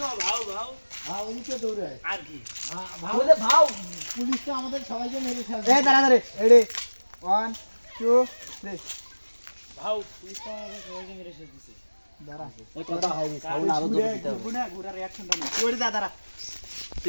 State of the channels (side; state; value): both; inverted; correlation -1.00